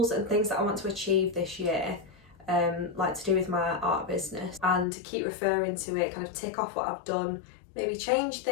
and things that I want to achieve this year, like to do with my art business, and to keep referring to it, kind of tick off what I've done, maybe change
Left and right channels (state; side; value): drops out; right; at 4.9 s